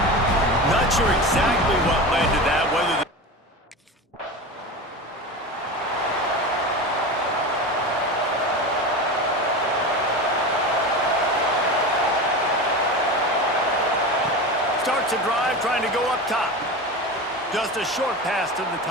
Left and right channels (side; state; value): both; normal; correlation 0.27